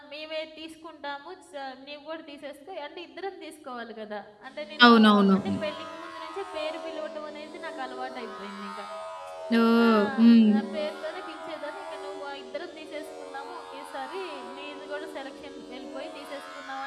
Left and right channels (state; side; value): identical; both; correlation 1.00